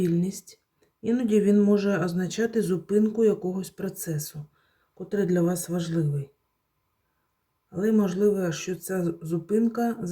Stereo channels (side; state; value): both; identical; correlation 1.00